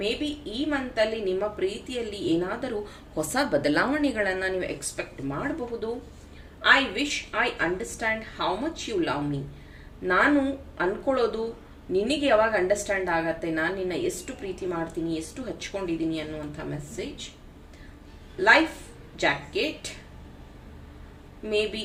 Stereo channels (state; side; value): identical; both; correlation 1.00